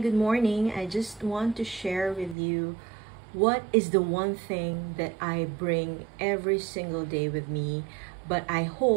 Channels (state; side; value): drops out; left; at 2.4 s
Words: morning. I just want to share with you what is the one thing that I bring every single day with me, but I